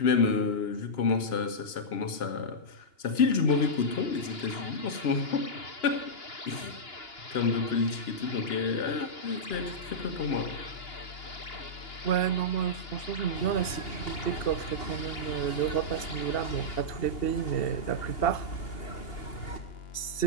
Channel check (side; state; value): right; late; 2.8 ms